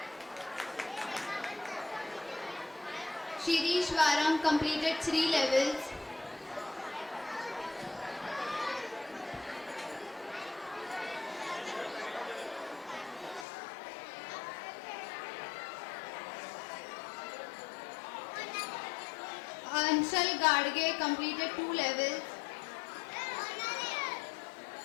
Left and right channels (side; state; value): right; drops out; at 13.5 s